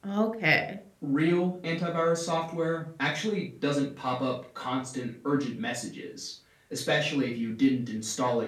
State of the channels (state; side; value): identical; both; correlation 1.00